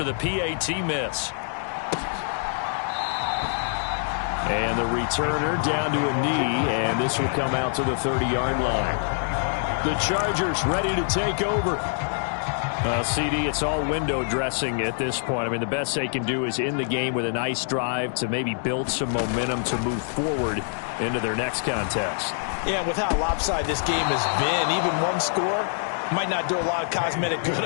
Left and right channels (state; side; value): silent; right; digital silence